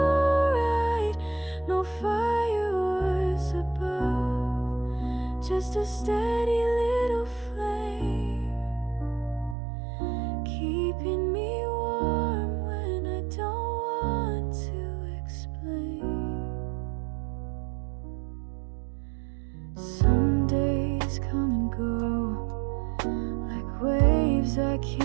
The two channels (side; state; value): left; drops out; at 9.6 s